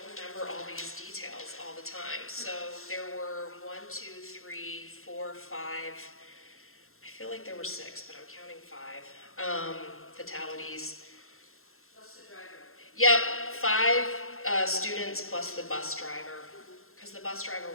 remember all these details all the time. So there were 1, 2, 3, 4, 5, I feel like there were 6, but I'm counting 5 fatalities. Plus the driver. Yep, 5 students plus the bus driver, because the bus driver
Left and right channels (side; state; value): right; late; 0.62 ms